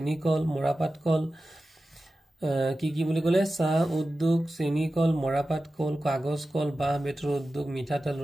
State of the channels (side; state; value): both; normal; correlation 0.94